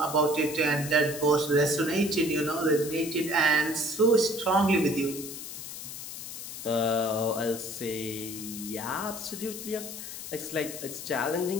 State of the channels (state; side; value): noise; left; hiss, 9 dB below the sound